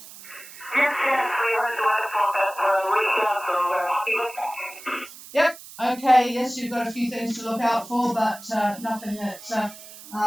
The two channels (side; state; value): right; noise; hiss, 17 dB below the sound